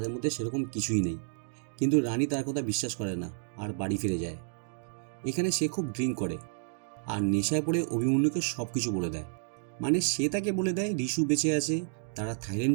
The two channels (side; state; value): left; silent; digital silence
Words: মধ্যে সেরকম কিছুই নেই। কিন্তু রানী তার কথা বিশ্বাস করে না আর বাড়ি ফিরে যায়। এখানে সে খুব ড্রিঙ্ক করে আর নেশায় পড়ে অভিমন্যুকে সব কিছু বলে দেয়। মানে সে তাকে বলে দেয় ঋষু বেঁচে আছে, তারা থাইল্যান্ড